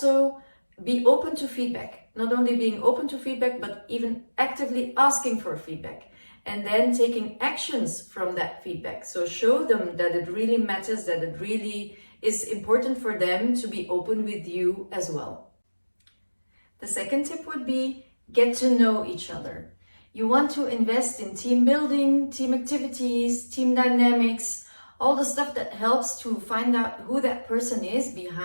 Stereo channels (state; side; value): inverted; both; correlation -1.00